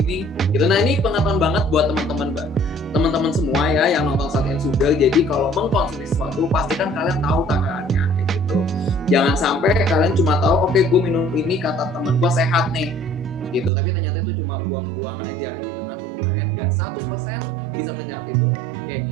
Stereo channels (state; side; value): drops out; left; at 13.7 s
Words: gitu. Nah ini pengetahuan banget buat teman-teman semua ya yang nonton Salt and Sugar. Jadi kalau mengkonsumsi sesuatu pastikan kalian tahu takarannya kayak gitu. Jangan sampai kalian cuma tahu oke, gue minum ini kata temen gue sehat nih gitu, tapi ternyata itu cuma buang-buang aja gitu kan. Tubuh kalian nggak 100% bisa menyerap itu.